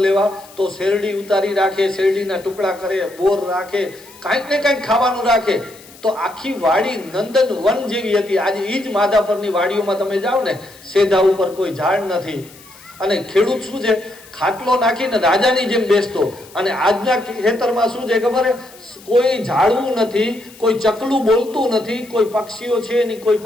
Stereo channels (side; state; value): left; noise; hiss, 22 dB below the sound